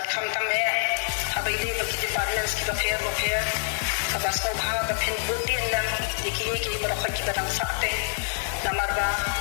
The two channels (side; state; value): right; silent; 61 dB below the other